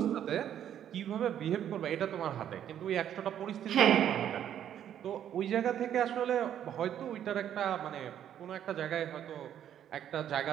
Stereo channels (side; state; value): left; quieter; 10.1 dB